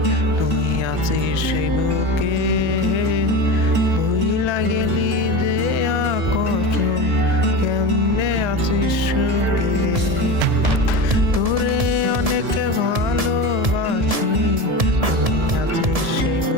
তুই আছিস সেই বুকে। ভুইলা গেলি যে আকসম, কেমনে আছিস সুখে। তোরে অনেকে ভালোবাসি, তুই আছিস সেই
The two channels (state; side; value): late; left; 1.7 ms